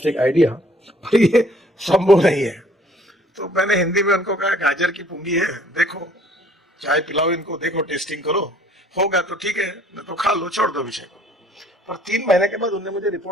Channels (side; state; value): both; normal; correlation 0.58